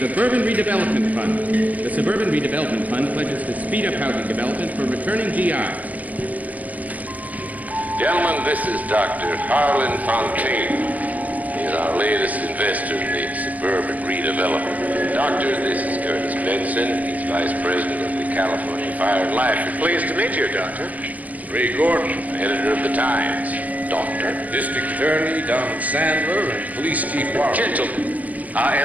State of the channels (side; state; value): left; late; 0.074 ms